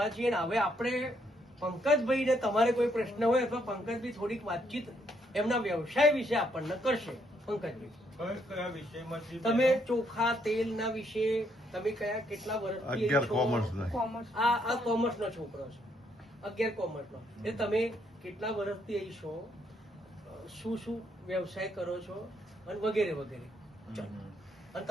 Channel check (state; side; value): normal; both; correlation 0.73